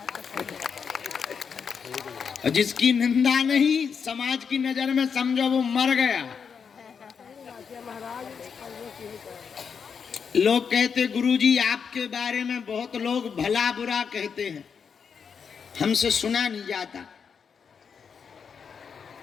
और जिसकी निंदा नहीं, समाज की नजर में समझो वो मर गया। लोग कहते गुरुजी आपके बारे में बहुत लोग भला बुरा कहते हैं, हमसे सुना नहीं जाता।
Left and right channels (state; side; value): quieter; right; 6.4 dB